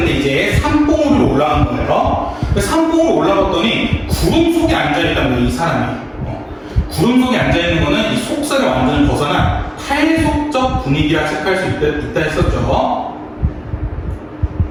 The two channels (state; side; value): identical; both; correlation 1.00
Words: 이제 산봉우로 올라간 거예요. 산봉우로 올라갔더니 구름 속에 앉아있다는 거예요. 이 사람이 구름 속에 앉아있는 거는 이 속세를 완전히 벗어난 탈속적 분위기라 체크할 수 있다 했었죠.